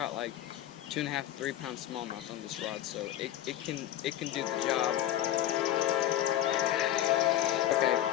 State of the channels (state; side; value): quieter; right; 12.6 dB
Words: like 2.5 to 3 pound smallmouth on this rod, so it can do the job. Okay,